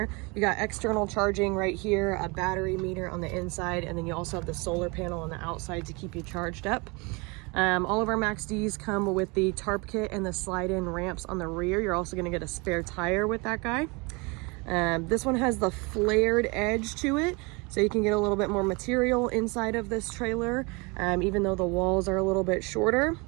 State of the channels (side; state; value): left; quieter; 28.1 dB